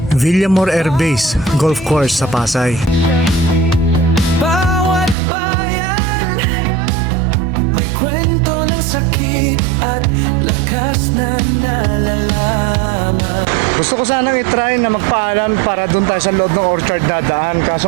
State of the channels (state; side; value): drops out; left; at 5.2 s